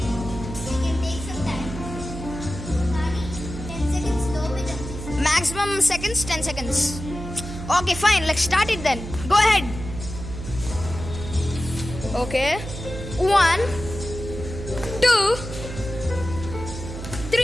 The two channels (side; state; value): right; noise; hum, 9 dB below the sound